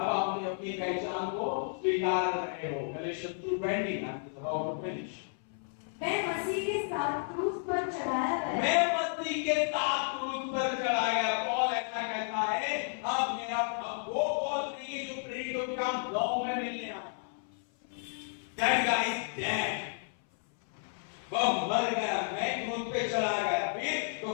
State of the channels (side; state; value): right; silent; 56 dB below the other